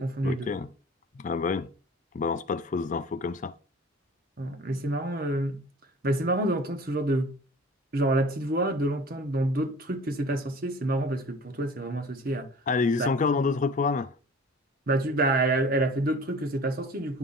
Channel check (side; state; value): both; normal; correlation 0.44